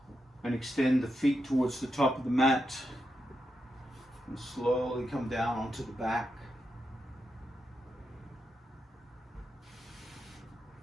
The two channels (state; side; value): normal; both; correlation 0.85